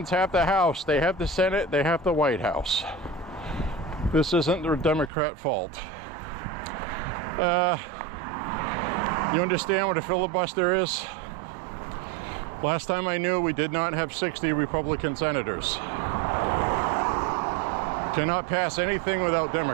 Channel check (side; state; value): left; drops out; at 5.1 s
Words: have the House, they have the Senate, they have the White House. This isn't the Democrat fault. You understand what a filibuster is? Last time I knew, we did not have 60 Republican senators. Cannot pass anything without